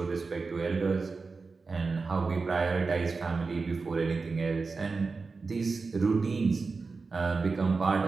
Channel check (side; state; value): left; quieter; 4.3 dB